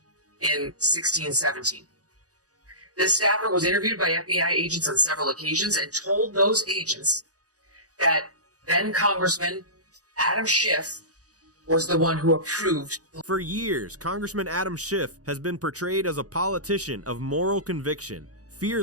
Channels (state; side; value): late; left; 0.67 ms